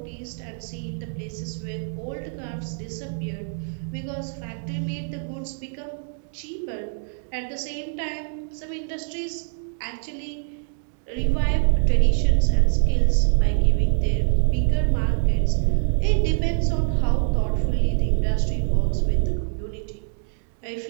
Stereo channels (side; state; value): left; silent; 62 dB below the other